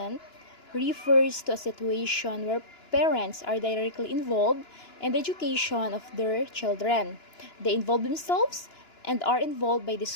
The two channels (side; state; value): right; late; 2.9 ms